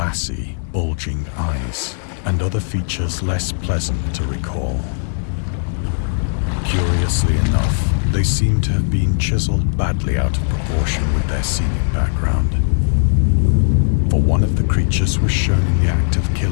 bulging eyes, and other features less pleasant to recall. Curiously enough, they seem to have been chiseled badly out of proportion with their scenic background. For one of the creatures was shown in the act of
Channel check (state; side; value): silent; right; digital silence